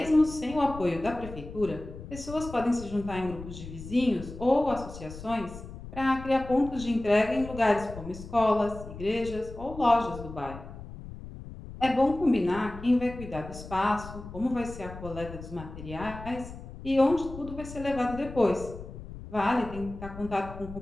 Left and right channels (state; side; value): noise; left; rumble, 13 dB below the sound